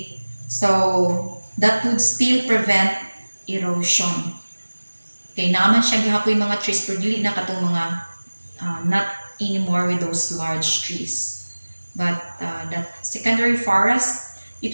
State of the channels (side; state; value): both; inverted; correlation -1.00